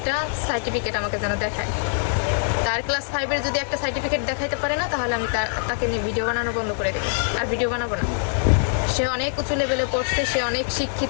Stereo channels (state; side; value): silent; right; digital silence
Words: সার্টিফিকেট আমাকে যেন দেখায়। তার ক্লাস 5-এর যদি একটা সার্টিফিকেট দেখাইতে পারে না, তাহলে আমি তাকে নিয়ে ভিডিও বানানো বন্ধ করে দেবো, আর ভিডিও বানাবো না। সে অনেক উঁচু লেভেলে পড়ছে, সে অনেক